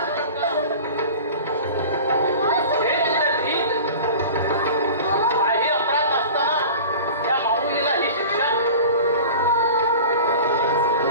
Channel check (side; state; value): both; inverted; correlation -0.38